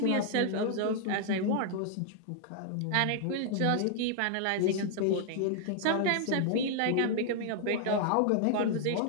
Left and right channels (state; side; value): different; both; correlation 0.00